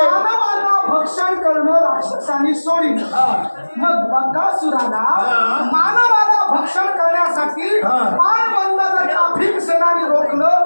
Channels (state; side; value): inverted; both; correlation -1.00